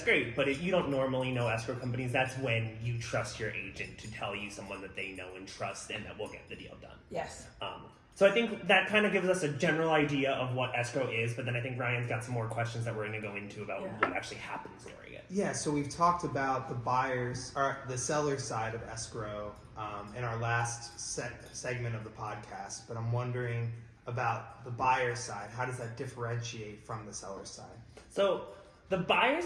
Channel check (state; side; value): identical; both; correlation 1.00